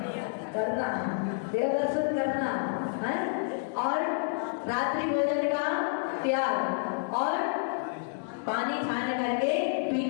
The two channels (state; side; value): silent; right; digital silence